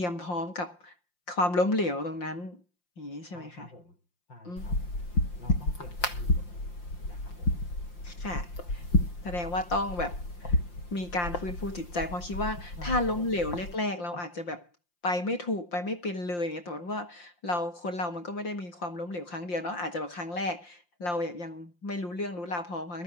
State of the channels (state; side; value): late; right; 5.7 ms